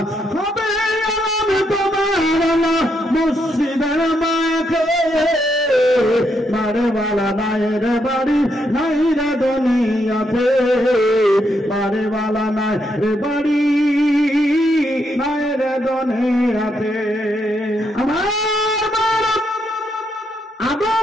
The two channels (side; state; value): both; normal; correlation 0.78